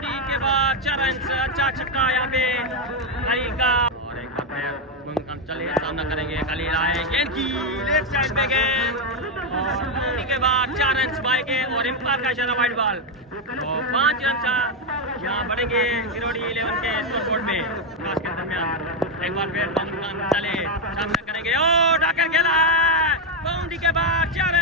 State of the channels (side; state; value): both; normal; correlation 0.05